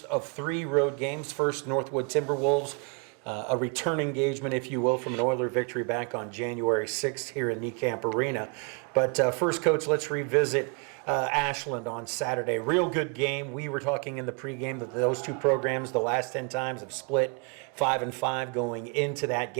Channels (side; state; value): left; quieter; 34.9 dB